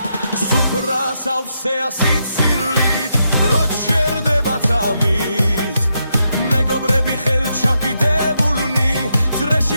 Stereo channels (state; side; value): inverted; both; correlation -0.82